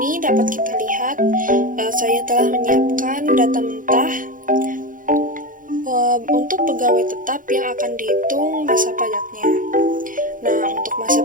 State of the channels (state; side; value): late; left; 0.39 ms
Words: dapat kita lihat saya telah menyiapkan data mentah untuk pegawai tetap yang akan dihitung masa pajaknya. Nah, untuk masa